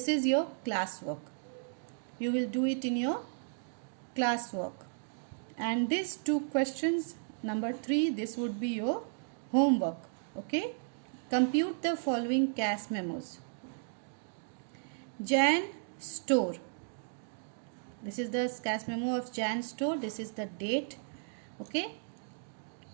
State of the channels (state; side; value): silent; left; digital silence